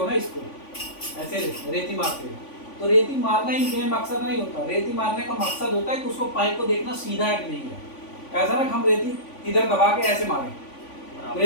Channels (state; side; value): late; right; 3.5 ms